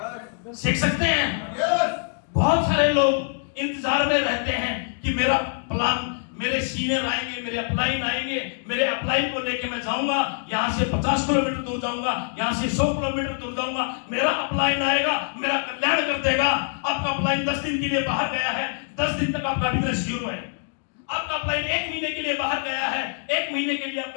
सीख सकते हैं। बहुत सारे लोग इंतजार में रहते हैं कि मेरा प्लान, मेरे सीनियर आएंगे, मेरे अपलाइन आएंगे, मेरे अपलाइन को लेके मैं जाऊंगा, यहाँ से 50 किलोमीटर दूर जाऊंगा, यहाँ से 100 किलोमीटर दूर जाऊंगा, मेरा अपलाइन आएगा, मेरा कल्याण कर देगा। आपका अपलाइन 10 दिन के लिए बाहर गया है, 10 दिन तक आपका बिजनेस जीरो है। आपका अपलाइन 1 महीने के लिए बाहर गया है, 1 महीने के लिए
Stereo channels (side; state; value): right; silent; digital silence